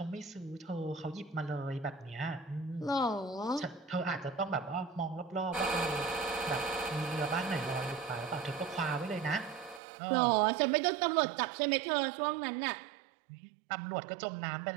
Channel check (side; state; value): left; drops out; at 9.8 s